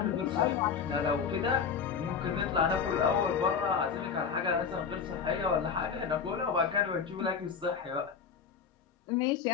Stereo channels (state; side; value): quieter; right; 6.5 dB